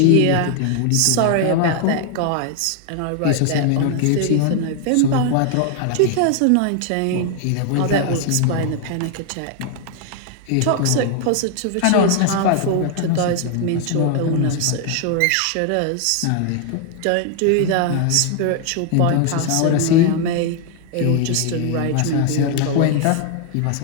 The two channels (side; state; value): both; different; correlation 0.00